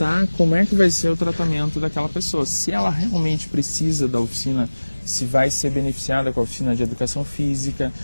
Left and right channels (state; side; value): inverted; both; correlation -1.00